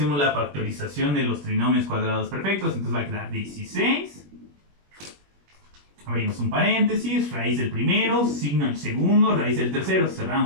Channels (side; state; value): left; late; 21 ms